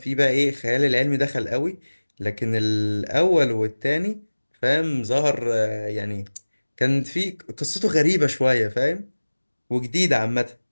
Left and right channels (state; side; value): inverted; both; correlation -1.00